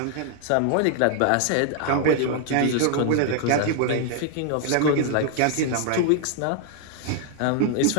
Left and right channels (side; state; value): both; different; correlation 0.00